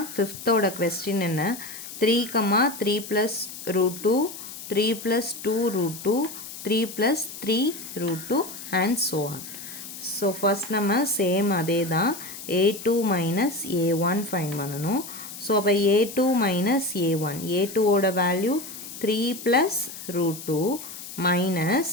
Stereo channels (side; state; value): left; noise; hiss, 12 dB below the sound